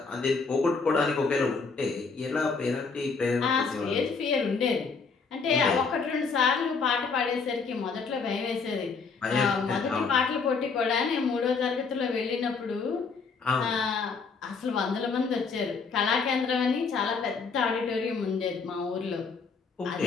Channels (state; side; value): quieter; right; 4.9 dB